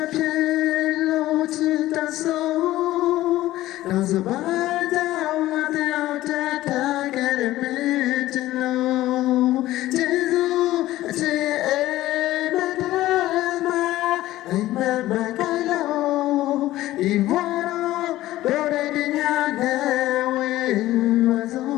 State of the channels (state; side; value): quieter; right; 15.6 dB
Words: မဖြစ်လို့ချစ်တဲ့ဆုံးနောက်စပါးကြောင့်ငါတို့တက်ခဲ့တဲ့မင်းချင်လို့ကျေးဇူးအချစ်ရဲ့မတဲ့မှာအိမ်မက်မကလို့ဒီဘဝတော့ဒိုရတဲ့ညနဲ့ဝေးပါစို